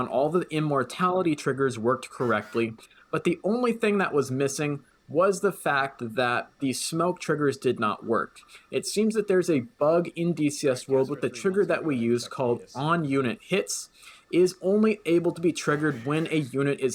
All the immortality triggers worked correctly, but the only thing that was missing was the fact that the smoke triggers did not work. It seems that there's a bug in DCS World with the trigger that we use called on-unit hits is only able to be triggered when a unit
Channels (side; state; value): both; identical; correlation 1.00